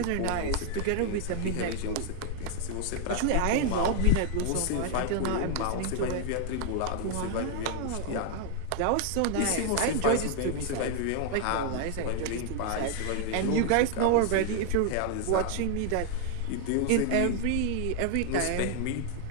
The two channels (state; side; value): different; both; correlation 0.00